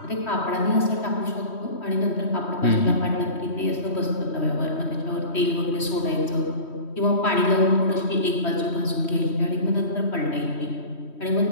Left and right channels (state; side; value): late; right; 3.1 ms